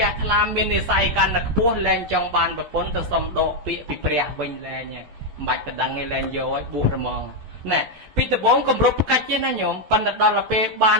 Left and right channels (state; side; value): late; left; 13 ms